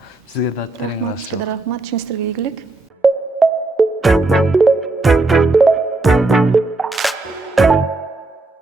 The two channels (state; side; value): quieter; left; 3.2 dB